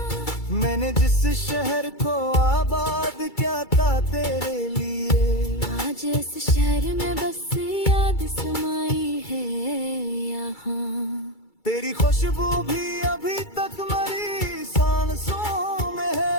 मैंने जिस शहर को आबाद किया था तेरे लिए, आज इस शहर में बस याद समाई है यहाँ। तेरी खुशबू भी अभी तक मेरी सांसों में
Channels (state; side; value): late; right; 2.3 ms